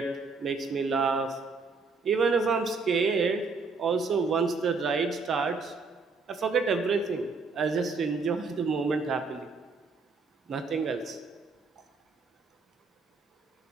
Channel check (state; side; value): quieter; left; 4.3 dB